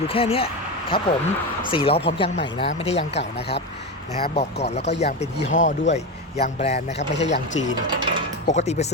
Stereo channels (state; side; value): normal; both; correlation 0.17